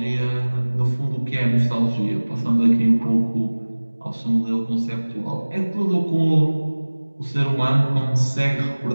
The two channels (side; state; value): both; inverted; correlation -1.00